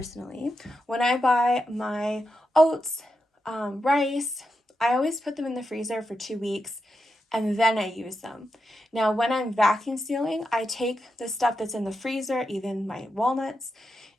when I buy my oats, rice, I always put them in the freezer for 2 weeks and then I use them. Now, when I'm vacuum sealing, I take the stuff that's in the freezer, even my walnuts,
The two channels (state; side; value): normal; both; correlation 0.86